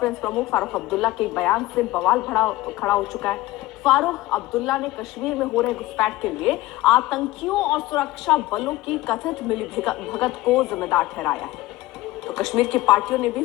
प्रमुख फारूक अब्दुल्ला के बयान से बवाल खड़ा हो चुका है। फारूक अब्दुल्ला ने कश्मीर में हो रहे घुसपैठ के लिए आतंकियों और सुरक्षा बलों की कथित मिलीभगत को जिम्मेदार ठहराया है। तो कश्मीर की पार्टियों ने भी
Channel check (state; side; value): quieter; right; 17.7 dB